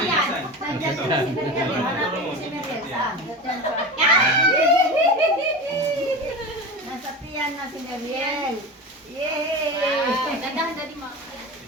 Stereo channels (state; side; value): normal; both; correlation 0.28